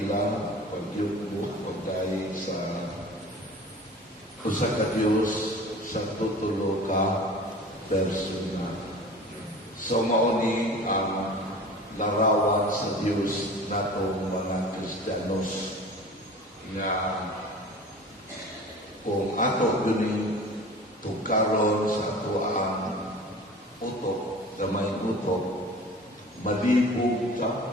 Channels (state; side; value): normal; both; correlation 0.40